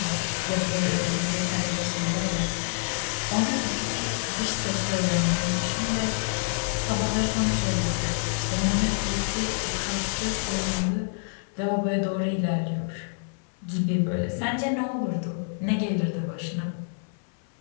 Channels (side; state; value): right; silent; 60 dB below the other